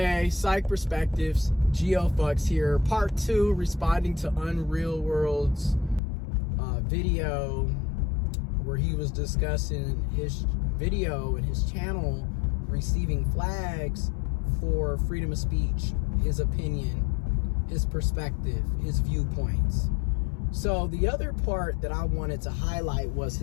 Psych Perspectives, GeoFucks here, part 2, responding to Unreal World's video where he was discussing his video and his channel receiving flags for freedom of speech, his opinion, his perspective, his viewpoints. So the other part that I wanted to highlight was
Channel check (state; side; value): drops out; right; at 6.0 s